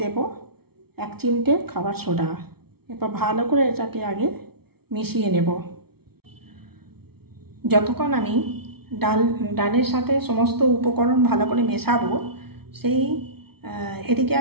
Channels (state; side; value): late; left; 0.95 ms